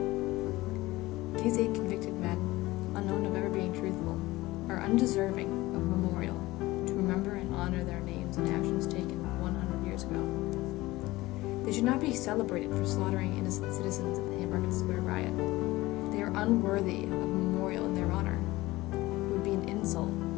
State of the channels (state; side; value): quieter; right; 19.1 dB